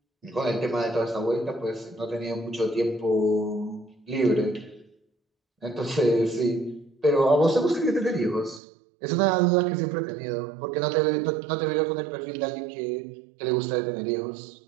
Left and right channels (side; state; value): left; drops out; at 8.6 s